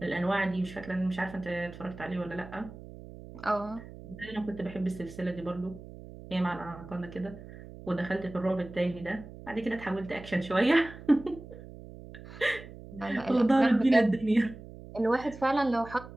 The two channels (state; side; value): noise; right; hum, 15 dB below the sound